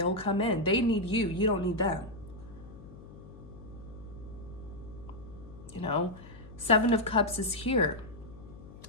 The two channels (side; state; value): left; noise; hum, 17 dB below the sound